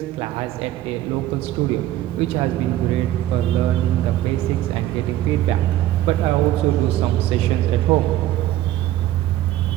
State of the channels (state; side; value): quieter; left; 14.1 dB